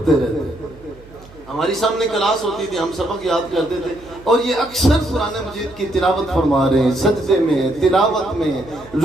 ہماری سامنے کلاس ہوتی تھی، ہم سبق یاد کرتے تھے، اور یہ اکثر قرآن مجید کی تلاوت فرما رہے ہیں، سجدے میں، تلاوت میں،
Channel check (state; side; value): noise; right; hum, 22 dB below the sound